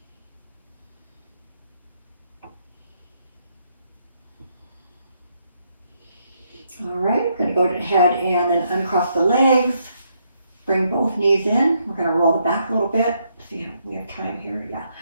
All right, we're going to go ahead and then uncross the legs, bring both knees in. We're going to roll the back a little bit. See if we have time here. Yeah,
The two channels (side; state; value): both; inverted; correlation -0.75